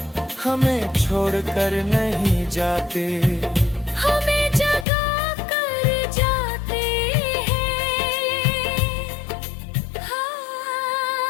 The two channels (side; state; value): right; drops out; at 4.9 s